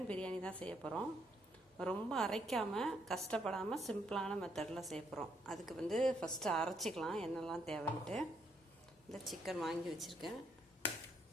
biryani தான் செய்ய போகிறோம். ரொம்ப அரைக்காமல் கஷ்டப்படாமல் சிம்பிளான மெத்தடில் செய்ய போகிறோம். அதுக்கு ஃபஸ்ட்டு அரைச்சிக்கலாம் என்னெல்லாம் தேவைன்ட்டு. இந்த சிக்கன் வாங்கி வச்சுருக்கேன்,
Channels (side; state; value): both; normal; correlation 0.73